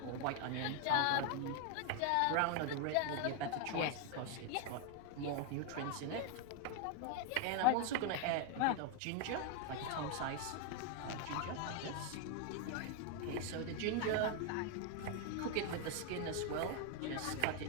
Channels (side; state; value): both; different; correlation 0.01